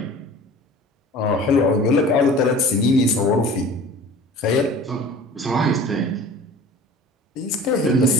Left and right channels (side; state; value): both; normal; correlation 0.43